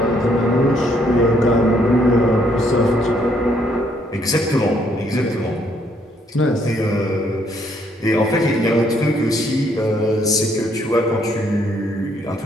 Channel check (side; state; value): both; normal; correlation 0.69